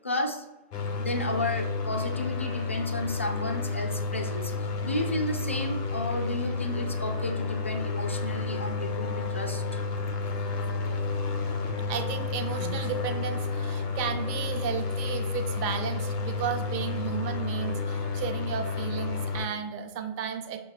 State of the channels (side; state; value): both; inverted; correlation -0.43